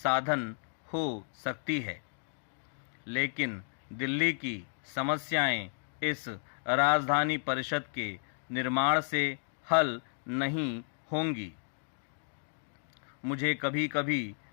हो सकती है। लेकिन दिल्ली की समस्याएं इस राजधानी परिषद के निर्माण से हल नहीं होंगी। मुझे कभी कभी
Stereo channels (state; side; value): silent; right; 56 dB below the other